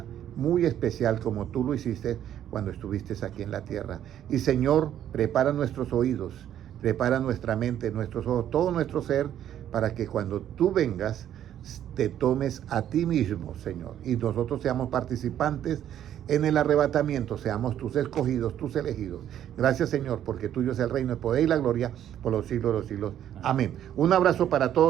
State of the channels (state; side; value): quieter; left; 10.8 dB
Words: muy especial como tú lo hiciste cuando estuviste aquí en la tierra. Y Señor, prepara nuestros oídos, prepara nuestra mente, nuestros ojos, todo nuestro ser, para que cuando tú vengas te tomes a ti mismo, Señor, y nosotros seamos participantes en el arrebatamiento, seamos tus escogidos, tus elegidos. Gracias, Señor, porque tuyo es el reino, el poder y la gloria por los siglos de los siglos. Amén. Un abrazo para